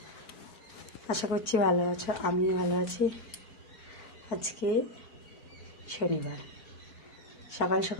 আশা করছি ভালো আছো, আমিও ভালো আছি। আজকে শনিবার, সকাল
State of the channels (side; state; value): right; late; 4.5 ms